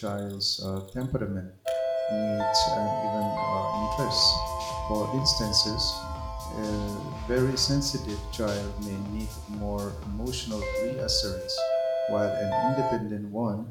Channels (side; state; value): both; identical; correlation 1.00